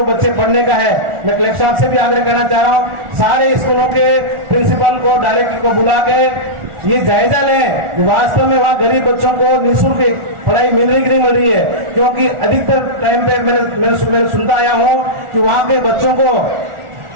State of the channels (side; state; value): left; late; 1.4 ms